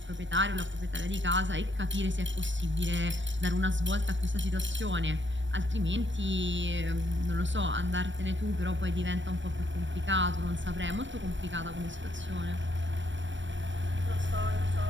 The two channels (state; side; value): late; left; 0.54 ms